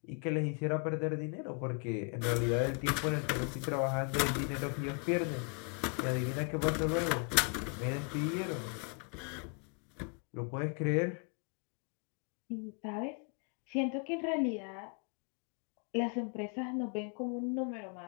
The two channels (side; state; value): right; quieter; 39.4 dB